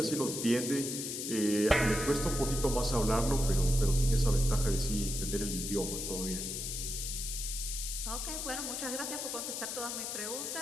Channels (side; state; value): left; noise; hiss, 4 dB below the sound